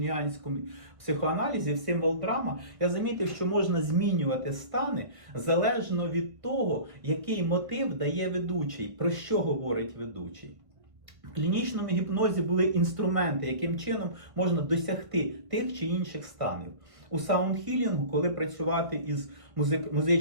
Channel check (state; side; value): late; left; 1.5 ms